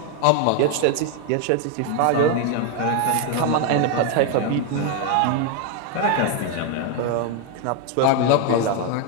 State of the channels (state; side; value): different; both; correlation 0.01